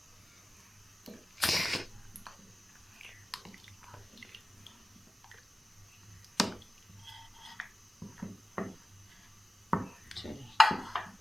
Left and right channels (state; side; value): normal; both; correlation 0.94